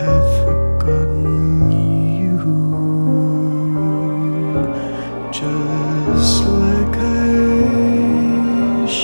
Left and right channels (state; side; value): inverted; both; correlation -1.00